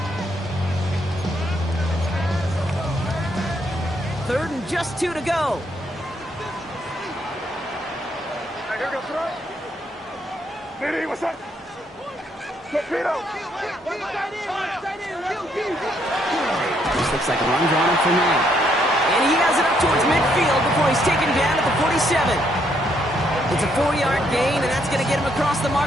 2. 3rd and just 2 to go. Diddy, what's up? Torpedo! This looks like a run drawn up for May. And he has it up towards midfield before he's taken down at the 47. It's a 4-yard gain, and that's going to get him across the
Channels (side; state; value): both; normal; correlation 0.72